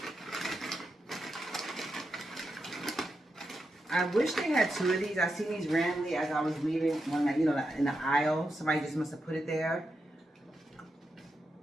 I wish they had 2 of these. I seen these randomly as I was leaving one night, you know, in the aisle. Somebody just must have put it there.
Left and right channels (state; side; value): normal; both; correlation 0.86